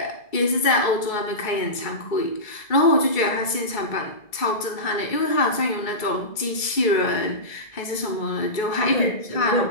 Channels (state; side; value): late; right; 2.3 ms